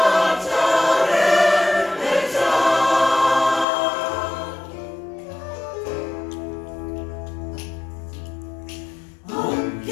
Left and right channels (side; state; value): right; drops out; at 3.7 s